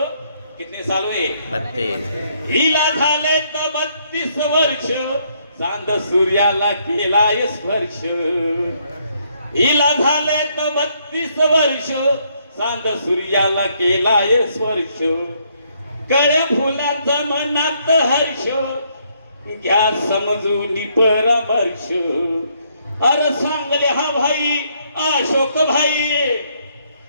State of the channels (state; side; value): inverted; both; correlation -0.71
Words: कितने साल हुए? 32। हिला झाले तर 32 वर्ष, चांद सूर्याला केलाय स्पर्श। हिला झाले तर 32 वर्ष, चांद सूर्याला केलाय स्पर्श। कळ्या फुलाचा मनात हर्ष, घ्या समजून परामर्श। अरे सांगले हा भाई अशोक भाई,